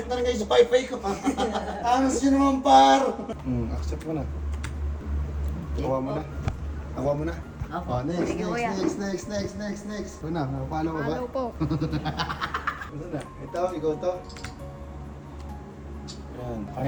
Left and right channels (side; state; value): both; identical; correlation 1.00